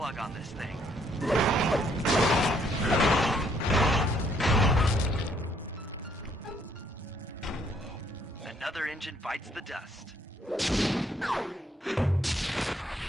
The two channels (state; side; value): normal; both; correlation 0.68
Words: on this thing. Another engine bites the dust.